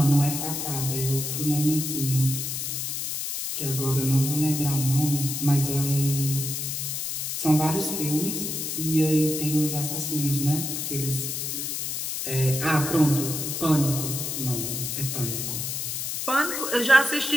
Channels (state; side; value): noise; left; hiss, 3 dB below the sound